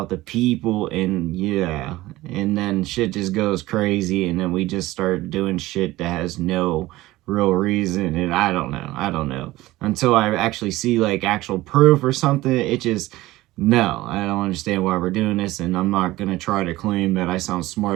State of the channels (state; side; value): quieter; left; 17.9 dB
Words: the people, and yeah, and then shit just goes crazy, and then we just start doing shit that has no real reason, and I don't know. Until I actually see, like, actual proof or something, it just, no, I don't understand why we're doing this, and I'm not gonna try to claim that I sound